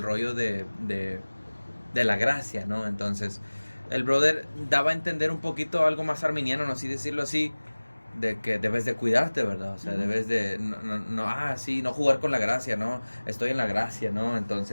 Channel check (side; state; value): both; inverted; correlation -1.00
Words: rollo de la gracia, ¿no? Entonces, el brother daba a entender un poquito algo más arminiano, no así decirlo así, de que debes de cuidarte, ¿verdad? O sea, debes de no jugar con la gracia, ¿no? Estoy en la gracia, ¿no?